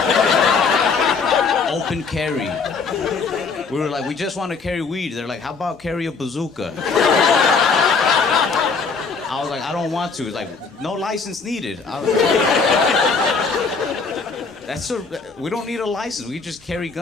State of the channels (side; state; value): right; quieter; 4.9 dB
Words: open carry. We were like, we just want to carry weed. They're like, how about carry a bazooka? I was like, I don't want to. It's like, no license needed. We don't need a license. We just carry